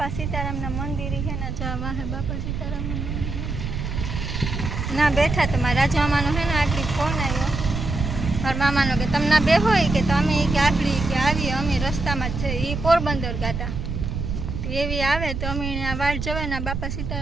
सीताराम ना मंदिर है ना जवा है बापा सीताराम ना ना बैठा तो मारा राजा मामा है ना आखरी फोन आयो और मामा नो के तमना बे होय के तमे के आखरी के आवी अमे रस्ता में छे ई पोरबंदर गाता तो एवी आवे तो अमे आ वाट जवे ना बापा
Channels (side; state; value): right; noise; rumble, 4 dB below the sound